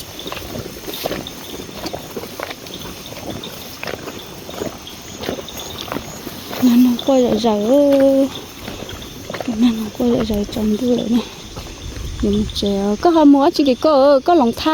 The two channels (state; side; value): identical; both; correlation 1.00